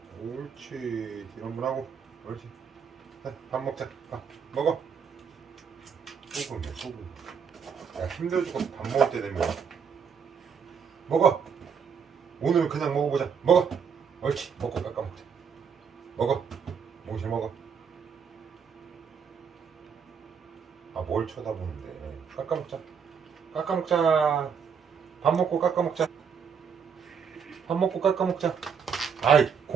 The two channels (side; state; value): left; quieter; 6.7 dB